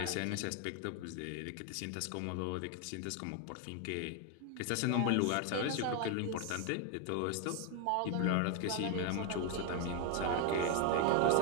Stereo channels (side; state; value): both; different; correlation 0.01